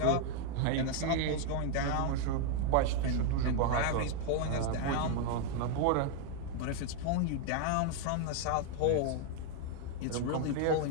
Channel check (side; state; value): both; different; correlation 0.00